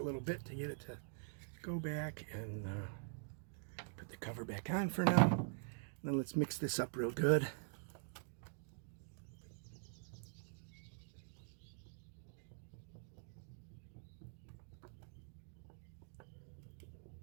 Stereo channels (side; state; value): left; silent; digital silence